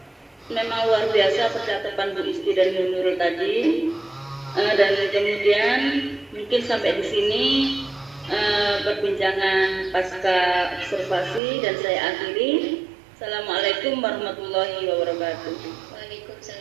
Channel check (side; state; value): left; drops out; at 11.4 s